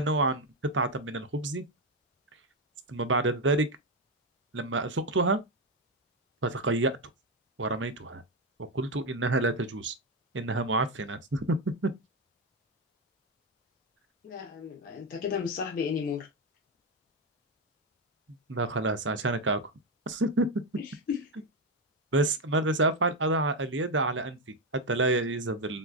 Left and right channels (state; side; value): normal; both; correlation 0.08